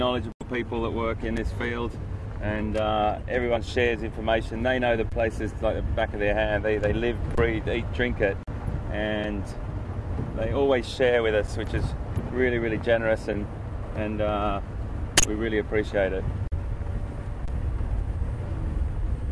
people that work in this field, and everyone shares information. They know the places like the back of their hand. They live, breathe, eat, drink it, and they always share with us, which is really, really generous, and we really appreciate it.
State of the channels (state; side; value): identical; both; correlation 1.00